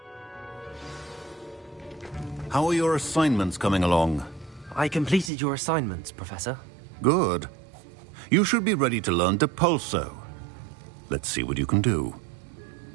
How are your assignments coming along? I completed your assignments, Professor. Good. You should be ready to learn Depulso. Let's see what you can do.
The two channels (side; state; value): left; drops out; at 5.3 s